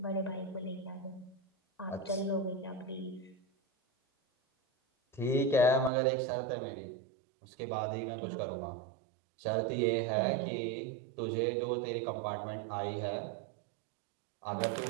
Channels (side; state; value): left; drops out; at 5.9 s